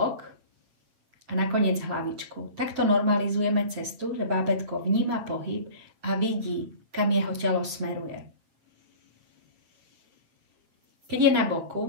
a nakoniec hlavičku. Takto normalizujeme cestu, že bábätko vníma pohyb a vidí, kam jeho telo smeruje. Keď je na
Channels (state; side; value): late; left; 7.9 ms